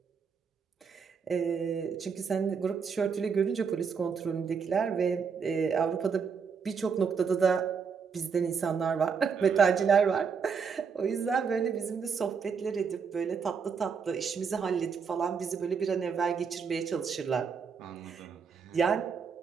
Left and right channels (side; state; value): left; quieter; 6.0 dB